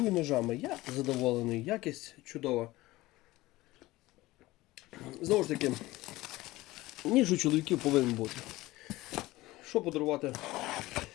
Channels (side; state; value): right; quieter; 18.6 dB